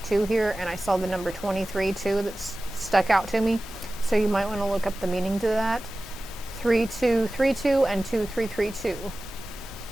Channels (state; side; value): normal; both; correlation 0.96